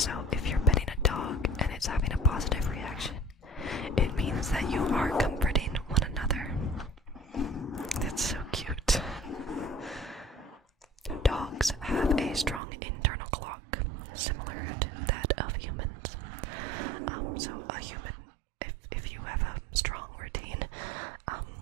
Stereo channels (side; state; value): left; drops out; at 12.6 s